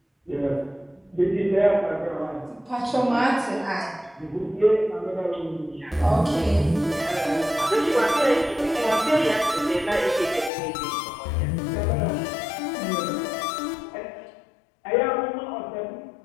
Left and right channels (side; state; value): right; drops out; at 10.5 s